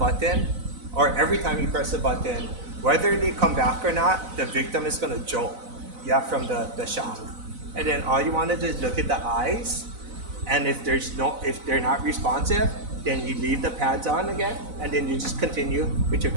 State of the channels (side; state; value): left; late; 4.0 ms